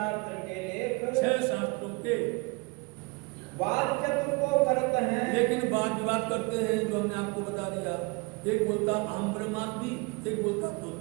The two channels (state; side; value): quieter; left; 27.4 dB